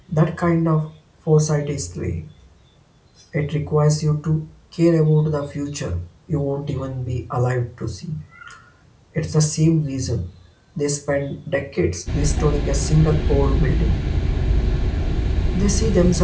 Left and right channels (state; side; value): identical; both; correlation 1.00